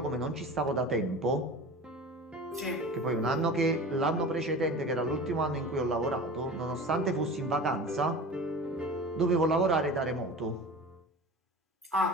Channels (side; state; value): both; normal; correlation 0.35